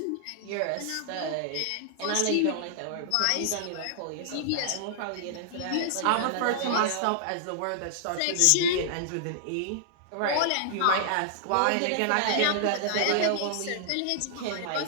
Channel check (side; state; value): both; different; correlation -0.01